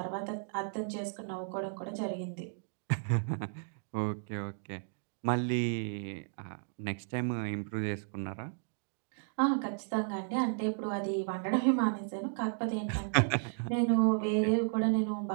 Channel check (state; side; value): silent; left; digital silence